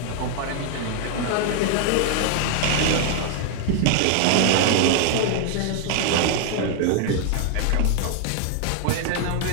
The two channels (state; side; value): different; both; correlation 0.00